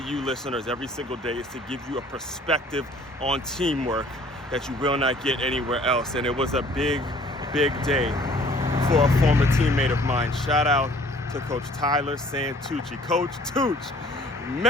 listeners every single day is to give you a perspective on teamwork that you will not get anywhere else. And it was a big day for a former teammate of mine. Shout out to Coach Tyler Santucci. Coach Tucc,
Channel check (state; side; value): normal; both; correlation 0.55